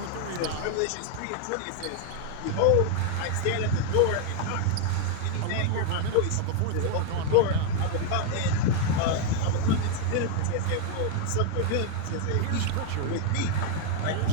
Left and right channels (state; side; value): different; both; correlation 0.00